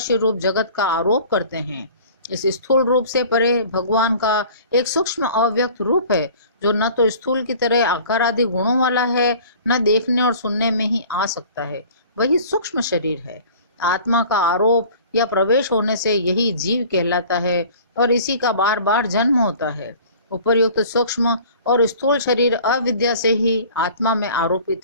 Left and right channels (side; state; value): both; inverted; correlation -0.46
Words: रूप जगत का आरोप करते हैं। इस स्थूल रूप से परे भगवान का एक सूक्ष्म अव्यक्त रूप है, जो न तो स्थूल की तरह आकार आदि गुणों वाला है, न देखने और सुनने में ही आ सकता है। वही सूक्ष्म शरीर है। आत्मा का आरोप या प्रवेश होने से यही जीव कहलाता है और इसी का बार बार जन्म होता है। उपर्युक्त सूक्ष्म और स्थूल शरीर अविद्या से ही आत्मा में